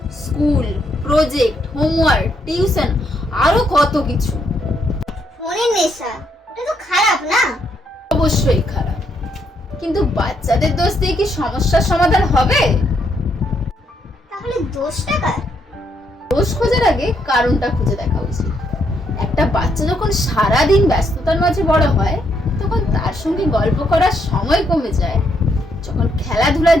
স্কুল, প্রজেক্ট, হোমওয়ার্ক, টিউশন, আরো কত কিছু। ফোনের নেশা, এটা তো খারাপ না? অবশ্যই খারাপ, কিন্তু বাচ্চাদের দোষ দিয়ে কি সমস্যার সমাধান হবে? তাহলে দোষটা কার? দোষ খোঁজার আগে কারণটা খুঁজে দেখা উচিত। একটা বাচ্চা যখন সারাদিন ব্যস্ততার মাঝে বড় হয় তখন তার সঙ্গে গল্প করার সময় কমে যায়, যখন খেলাধুলার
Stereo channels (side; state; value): both; normal; correlation 0.75